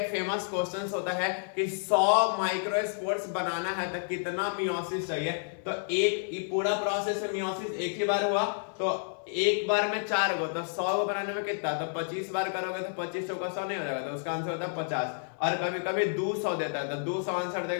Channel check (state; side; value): silent; right; 58 dB below the other